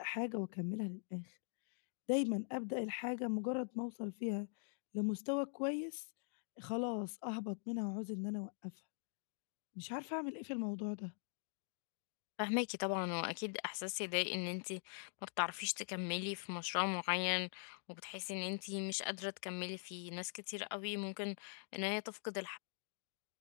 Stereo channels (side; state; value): right; silent; digital silence